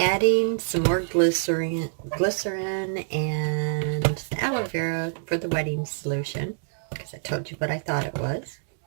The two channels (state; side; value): silent; left; digital silence